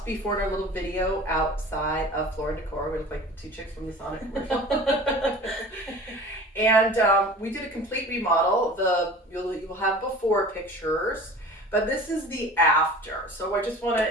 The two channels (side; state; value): both; normal; correlation 0.40